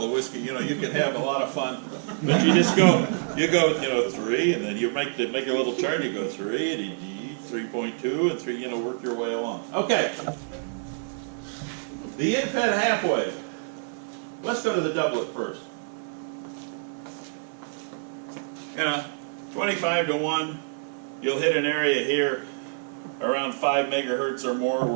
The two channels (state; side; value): silent; left; 60 dB below the other